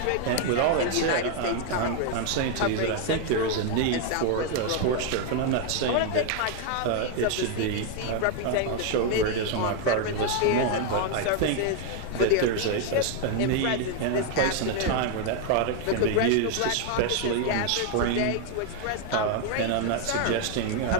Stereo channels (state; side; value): different; both; correlation 0.00